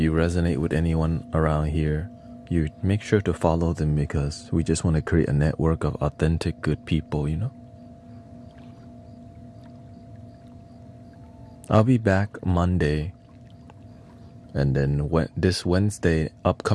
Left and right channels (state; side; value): identical; both; correlation 1.00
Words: resonate with anyone around here, you make sure to follow them, because we just want to create a network of authentic good people, you know. I'll be back Monday, and then this Wednesday,